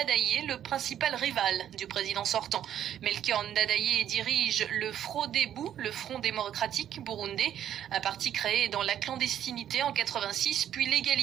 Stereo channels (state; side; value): quieter; left; 10.5 dB